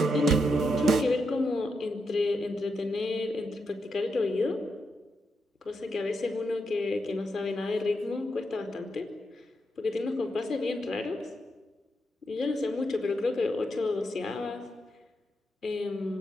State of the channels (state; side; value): normal; both; correlation 0.83